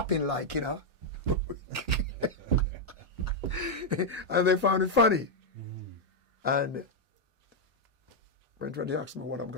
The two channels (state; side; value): normal; both; correlation -0.01